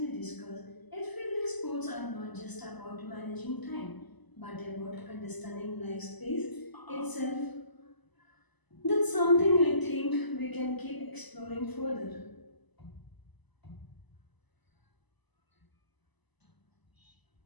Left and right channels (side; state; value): right; late; 1.0 ms